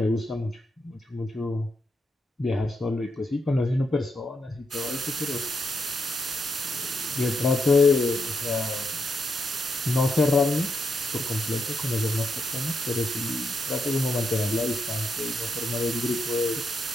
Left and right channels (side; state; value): both; normal; correlation 0.81